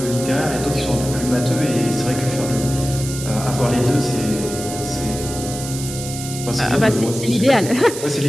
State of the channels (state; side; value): noise; right; hiss, 9 dB below the sound